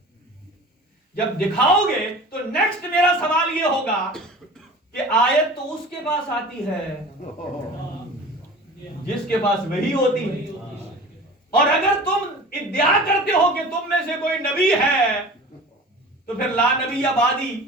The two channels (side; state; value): both; normal; correlation 0.40